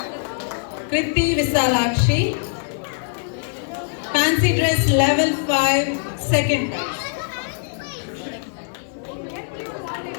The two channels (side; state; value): right; silent; 59 dB below the other